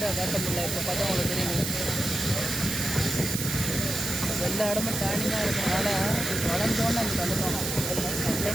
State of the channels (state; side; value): noise; right; hiss, 3 dB below the sound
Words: காட்ட முடியல. இப்போ பார்த்தா உங்களுக்கு தெரியுது எல்லா இடமும் டேர்னிங்காக இருக்கிறதுனால வளைஞ்சோன்னு நமக்கு வந்துட்டோம்.